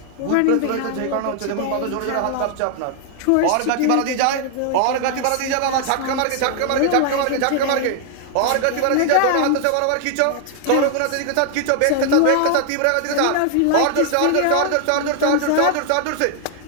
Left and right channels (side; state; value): both; different; correlation 0.00